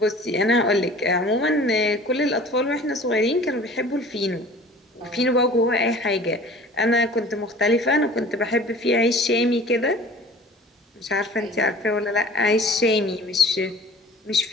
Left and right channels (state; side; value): normal; both; correlation 0.45